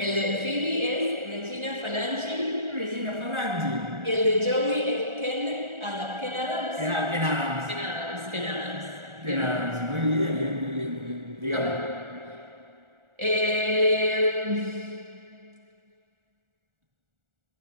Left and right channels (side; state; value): left; late; 1.4 ms